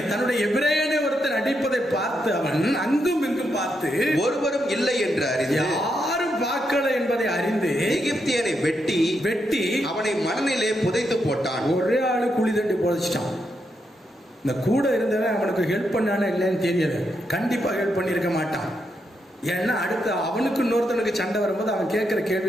தன்னுடைய எபிரேயனை ஒருத்தன் அடிப்பதை பார்த்து அவன் அங்கும் இங்கும் பார்த்து, ஒருவரும் இல்லை என்று அறிந்து, யாரும் பார்க்கல என்பதை அறிந்து, எகிப்தியனை வெட்டி அவனை மணலிலே புதைத்து போட்டான். ஒரே ஆளு குழி தண்டி புதைச்சிட்டான். இந்த கூட இருந்தவன் அவனுக்கு ஹெல்ப் பண்ணானே இல்லைன்னு தெரியல. கண்டிப்பா ஹெல்ப் பண்ணியிருக்க மாட்டான். ஏன்னா அடுத்து அவனுக்கு இன்னொருத்தனுக்கு சண்டை வரும்போது அவன் கேட்கிற கேள்வி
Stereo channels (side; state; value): both; normal; correlation 0.82